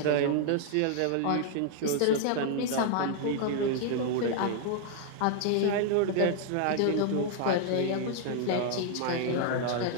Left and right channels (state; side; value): different; both; correlation 0.00